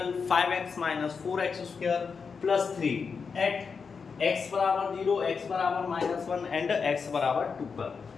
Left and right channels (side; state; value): right; quieter; 5.5 dB